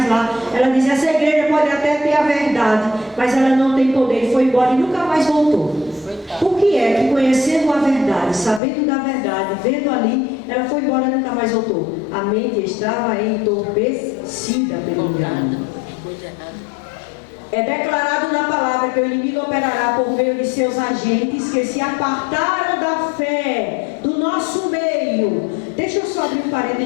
lá. Ela disse, essa igreja pode até ter a verdade, mas ela não tem poder, e foi embora e nunca mais voltou. Por que é que conhecendo a verdade, sabendo da verdade, vendo ali, ela foi embora e nunca mais voltou? A mente estava entorpecida pelo engano. É declarado na palavra que o inimigo operará por meio de seus agentes que se apartaram da fé do nosso meio. Deixa eu só abrir um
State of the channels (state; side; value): drops out; right; at 8.6 s